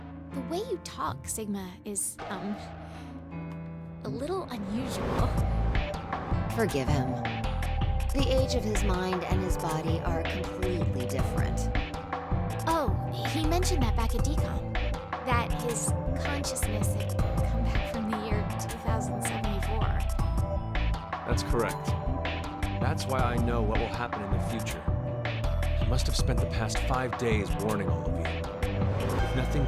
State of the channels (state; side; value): identical; both; correlation 1.00